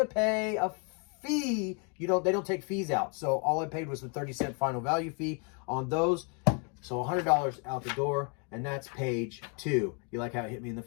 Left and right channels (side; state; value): right; quieter; 36.9 dB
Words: pay a fee. They don't take fees out. So all I paid was the 30-cent final value fee on those. So $100 out the door, and that's page 2. You like how it hit me in the